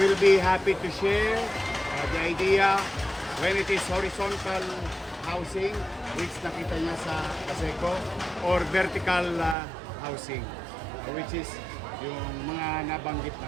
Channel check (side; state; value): left; drops out; at 9.6 s